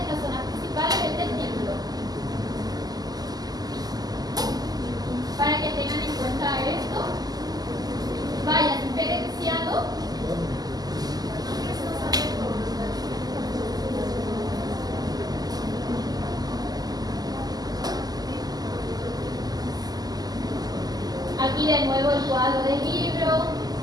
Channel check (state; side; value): late; left; 0.19 ms